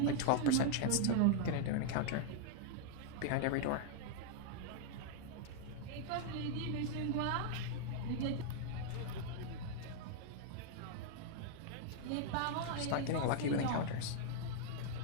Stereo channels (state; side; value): different; both; correlation 0.00